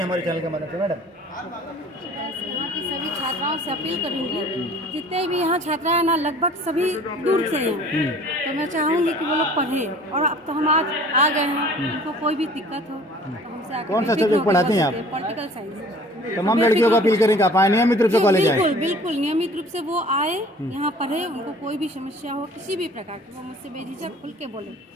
चैनल के मदद से मैडम? यहाँ की सभी छात्राओं से अपील करूंगी, जितने भी यहाँ छात्रा है ना, लगभग सभी दूर से हैं, तो मैं चाहूँगी कि वो लोग पढ़े। और अब तो हम आज आ गए हैं, उनको कोई भी दिक्कत हो तो हमसे आकर कौन सा सब्जेक्ट पढ़ाती हैं आप? Political science. तमाम लड़कियों को अपील करें कि आप आए नियमित रूप से कॉलेज आए। बिल्कुल बिल्कुल नियमित रूप से वो आए, यहाँ पढ़े। उनको कोई भी समस्या हो, किसी भी प्रकार की, वो मुझसे बेझिझक खुल के बोले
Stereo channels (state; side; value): normal; both; correlation 0.49